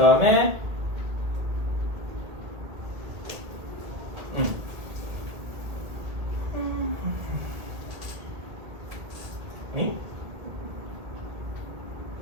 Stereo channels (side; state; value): left; late; 2.0 ms